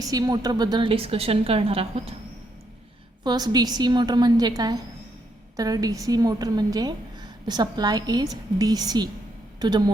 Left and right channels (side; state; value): both; normal; correlation 0.76